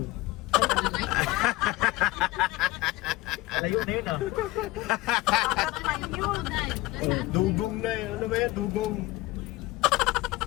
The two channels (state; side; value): quieter; right; 19.7 dB